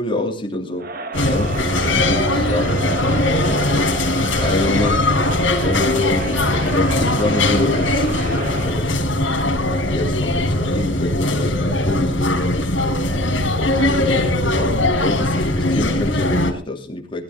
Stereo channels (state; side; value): normal; both; correlation 0.42